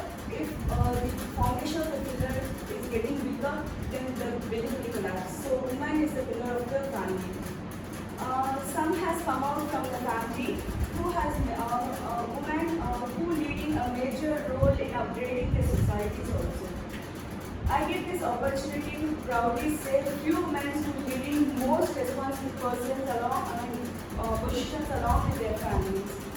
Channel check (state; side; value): identical; both; correlation 1.00